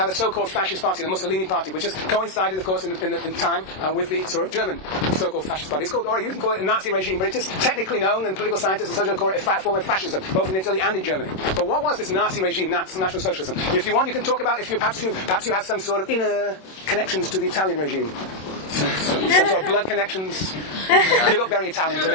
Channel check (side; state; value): right; late; 27 ms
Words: a so-called fascist party, the Mussolini party, which has coincided, of course, in time with the sort of German so-called fascist party. It's called, or you can call it a Nazi regime, but it is technically known, and political scientists and socialists call it a form of fascism, both in Italy and in Germany. But what was this Nazi regime, National Socialism? If you want, you can talk about perhaps you have some sort of inner connections to the Italian regime. Some sort of blood connections. You look very Italian to